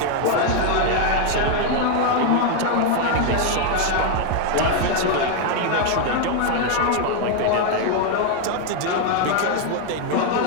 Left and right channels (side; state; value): both; different; correlation 0.01